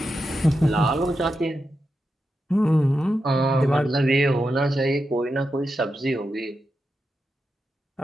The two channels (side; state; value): both; normal; correlation 0.88